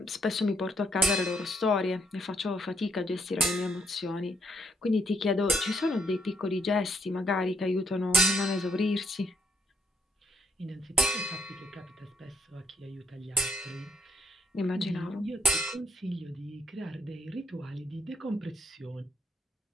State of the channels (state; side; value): normal; both; correlation 0.74